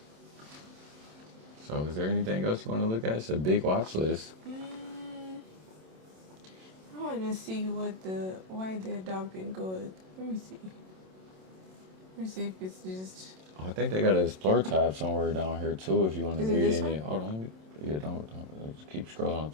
So is there anything else you want to look at? It's a big watch list. I want to see why they're dumping gold. Let me see. Let me see if it's just... Oh, I think they got an Explore tab somewhere down here too if you want to read this any. one? Hold on. Yeah, don't just keep scrolling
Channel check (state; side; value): late; left; 27 ms